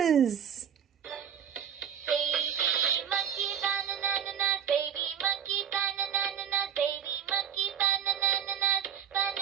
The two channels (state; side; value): quieter; left; 8.5 dB